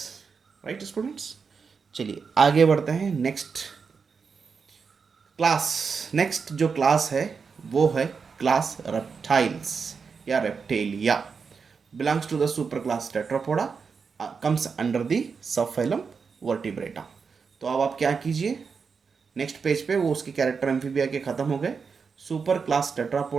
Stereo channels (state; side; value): quieter; left; 5.5 dB